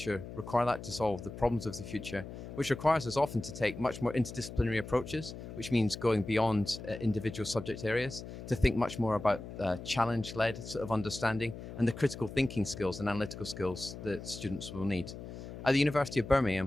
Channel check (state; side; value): noise; left; hum, 11 dB below the sound